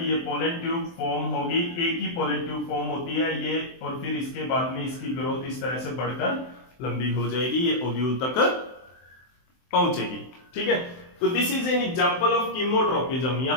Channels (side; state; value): right; late; 23 ms